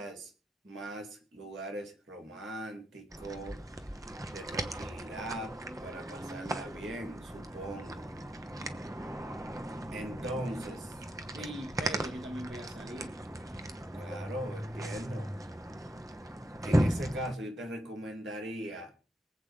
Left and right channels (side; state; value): both; normal; correlation 0.80